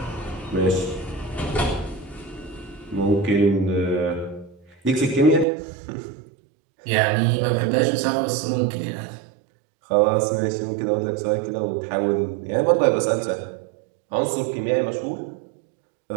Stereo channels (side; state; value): left; drops out; at 5.5 s